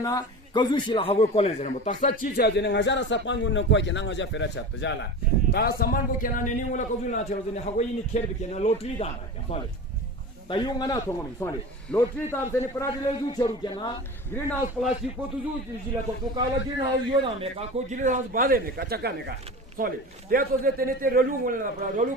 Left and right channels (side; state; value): both; normal; correlation 0.31